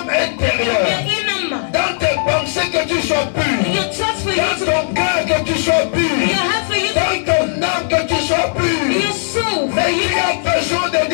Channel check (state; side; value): silent; right; digital silence